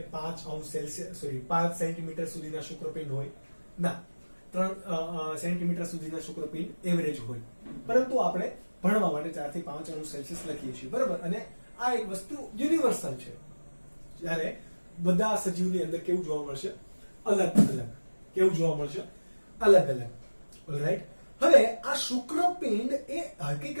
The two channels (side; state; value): both; inverted; correlation -1.00